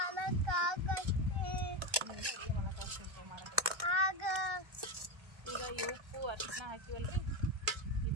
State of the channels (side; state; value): left; late; 1.3 ms